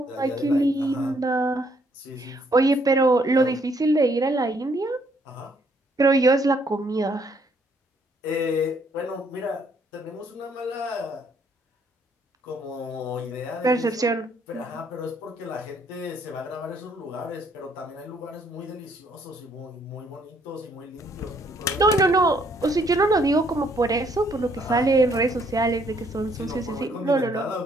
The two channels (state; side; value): normal; both; correlation 0.67